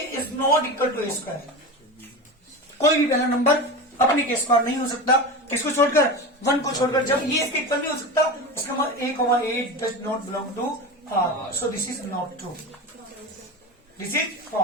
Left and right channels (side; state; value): both; normal; correlation 0.26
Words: is not equal to a square. कोई भी पहला नंबर अपने के स्क्वायर नहीं हो सकता, किसको छोड़कर, 1 को छोड़कर। जब ये इसके इक्वल नहीं हो सकता इसका मतलब a, does not belong to r, so this is not true, this is